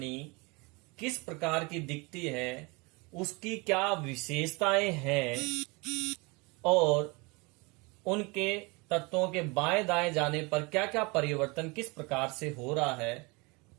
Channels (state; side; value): quieter; left; 27.3 dB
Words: किस प्रकार की दिखती है, उसकी क्या विशेषताएं हैं और उनके तत्वों के बाएं दाएं जाने पर क्या क्या परिवर्तन किस प्रकार से हो रहा है,